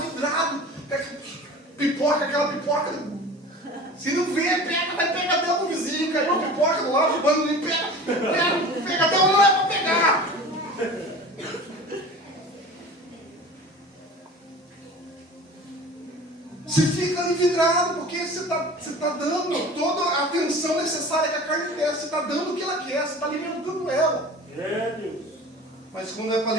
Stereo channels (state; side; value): normal; both; correlation 0.39